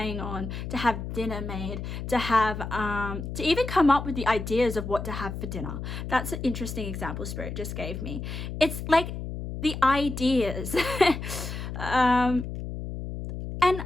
on to have dinner made, to have to even come up with the ideas of what to have for dinner. That's an interesting example Spirit just gave me. It's like the ideas. And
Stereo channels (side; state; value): left; noise; hum, 6 dB below the sound